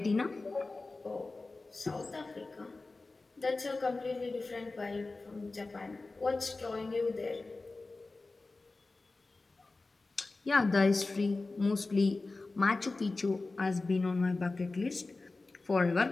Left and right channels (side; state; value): right; quieter; 3.4 dB